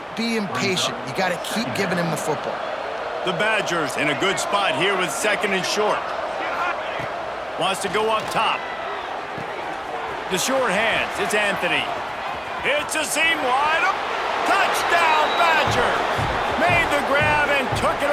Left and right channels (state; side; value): identical; both; correlation 1.00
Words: be impatient. You got to keep giving him the football. The Badgers in a good spot here with 2nd and short. Wants to go up top. The short hands, it's Anthony. It's a seam wide up. Touchdown, Badgers! Made the grab and took it